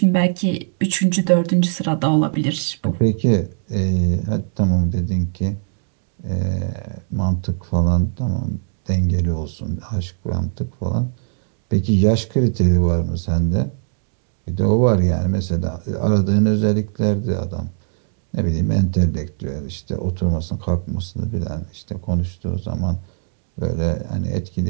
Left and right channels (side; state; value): left; silent; digital silence